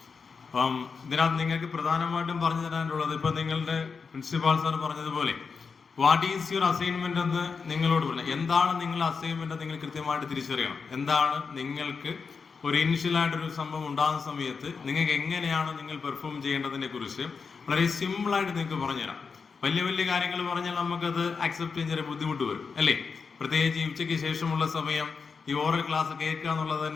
അപ്പം ഇതിനകത്ത് നിങ്ങൾക്ക് പ്രധാനമായിട്ടും പറഞ്ഞു തരാനുള്ളത്, ഇപ്പം നിങ്ങളുടെ പ്രിൻസിപ്പാൾ സാർ പറഞ്ഞതുപോലെ വാട്ട് ഈസ് യുവർ അസൈൻമെന്റ് എന്ന് നിങ്ങളോട് പറഞ്ഞു. എന്താണ് നിങ്ങളുടെ അസൈൻമെന്റ് നിങ്ങൾ കൃത്യമായിട്ട് തിരിച്ചറിയണം. എന്താണ് നിങ്ങൾക്ക് ഒരു ഇനിഷ്യലായിട്ടൊരു സംഭവം ഉണ്ടാകുന്ന സമയത്ത് നിങ്ങൾക്ക് എങ്ങനെയാണ് നിങ്ങൾ പെർഫോം ചെയ്യേണ്ടതിനെ കുറിച്ച് വളരെ സിമ്പിളായിട്ട് നിങ്ങൾക്ക് പറഞ്ഞുതരാം. വലിയ വലിയ കാര്യങ്ങൾ പറഞ്ഞാൽ നമുക്കത് അക്സെപ്റ്റ് ചെയ്യാൻ ചെറിയ ബുദ്ധിമുട്ട് വരും, അല്ലേ? പ്രത്യേകിച്ച് ഈ ഉച്ചയ്ക്ക് ശേഷമുള്ള സമയം ഈ ഓറൽ ക്ലാസ് കേൾക്കുക എന്നുള്ളത്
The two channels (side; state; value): right; quieter; 5.3 dB